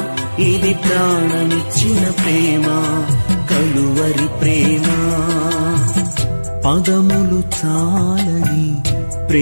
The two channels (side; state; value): both; inverted; correlation -1.00